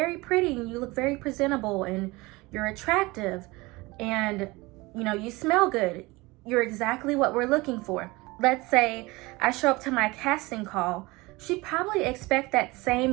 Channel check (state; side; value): quieter; left; 22.6 dB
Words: pretty, and you look very presentable, and you're attractive, and you know, you smell good. You're exactly what we're looking for. Let's say I show up to my casting call. She'd probably expect that